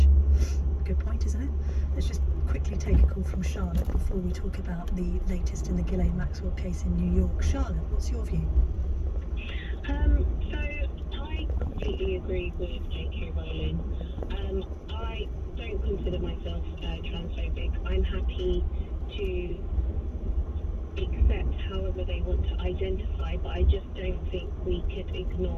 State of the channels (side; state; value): both; identical; correlation 1.00